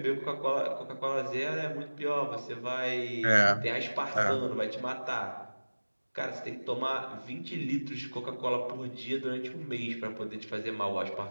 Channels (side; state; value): both; inverted; correlation -1.00